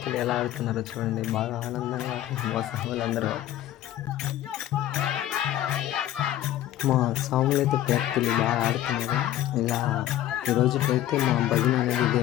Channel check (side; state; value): right; quieter; 13.1 dB